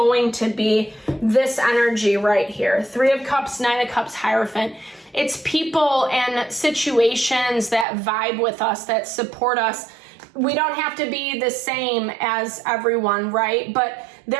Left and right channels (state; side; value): drops out; left; at 7.9 s